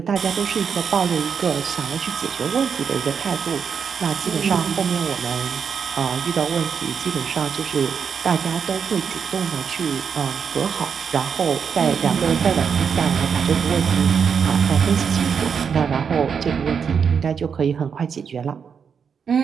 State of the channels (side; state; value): left; quieter; 6.7 dB